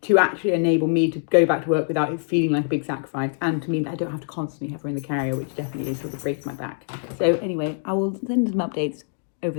to actually enable me to go back to work without it feeling like a big sacrifice, and to mean that I don't have to constantly have her in the carrier, which definitely is sort of breaks my back. So anyway, I will send some updates over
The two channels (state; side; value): silent; right; digital silence